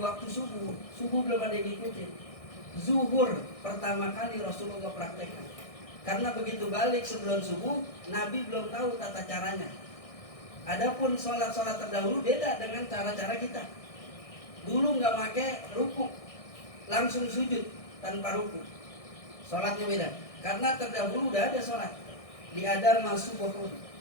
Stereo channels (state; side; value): late; right; 1.6 ms